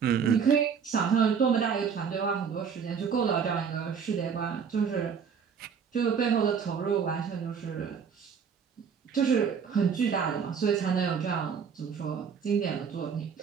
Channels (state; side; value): quieter; left; 6.7 dB